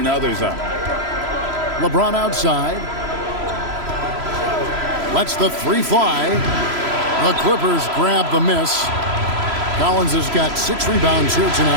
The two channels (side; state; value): left; late; 3.0 ms